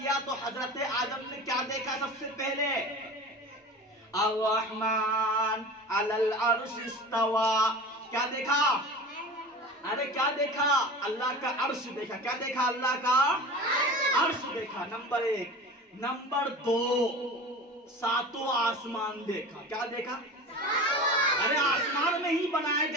तो हजरत आदम ने क्या देखा? सबसे पहले अर्रहमान अलल अर्श इस्तवा। क्या देखा? अरे क्या देखा? अल्लाह का अर्श देखा। क्या देखा? अल्लाह का अर्श देखा, नंबर 1। नंबर 2, 7 आसमान देखा। क्या देखा? अरे आसमान में ही बनाए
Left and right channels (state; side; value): normal; both; correlation 0.34